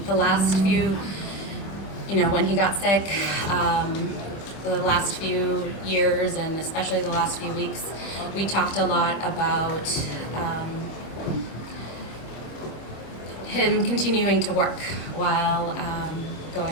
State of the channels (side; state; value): right; late; 26 ms